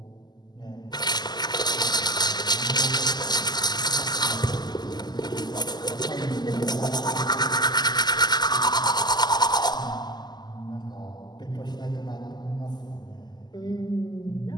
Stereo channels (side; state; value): right; late; 0.20 ms